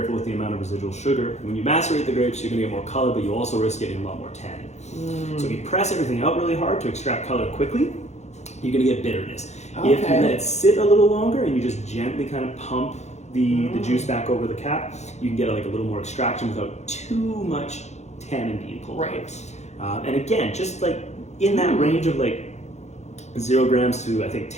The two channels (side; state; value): right; late; 0.33 ms